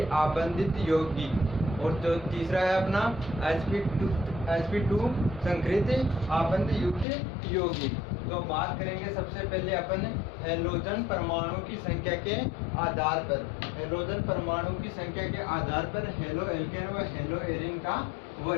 आबंधित यौगिक, और जो तीसरा है अपना sp2 संकृत आबंध युक्त यौगिक। तो बात करेंगे सबसे पहले अपन हैलोजन परमाणु की संख्या के आधार पर। हैलोजन परमाणु की संख्या के आधार पर हेलो एल्केन व हेलो एरिन का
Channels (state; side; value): drops out; right; at 7.1 s